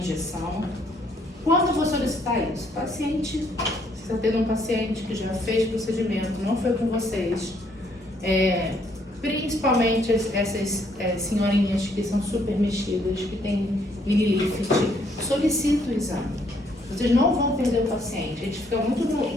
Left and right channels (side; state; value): both; normal; correlation 0.68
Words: Quando eu vou solicitar isso? Paciente, você está tendo um paciente que já fez procedimento, não foi com vocês, principalmente essas senhorinhas que são super mexidas, que têm mini-lift, solicita o exame. Vocês não vão perder o paciente. A gente fica